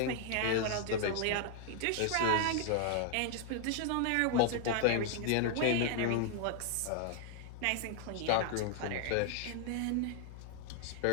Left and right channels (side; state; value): both; different; correlation 0.00